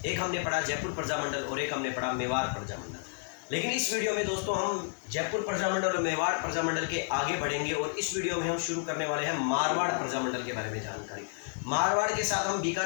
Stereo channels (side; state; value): right; silent; digital silence